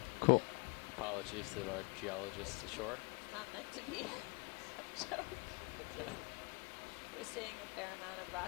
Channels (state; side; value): quieter; right; 31.8 dB